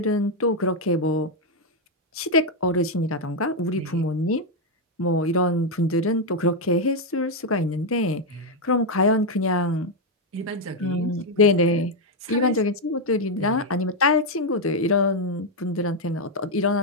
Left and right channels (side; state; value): both; normal; correlation 0.02